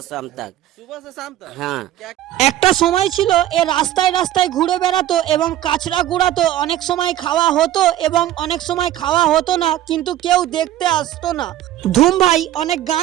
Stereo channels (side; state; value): left; quieter; 13.0 dB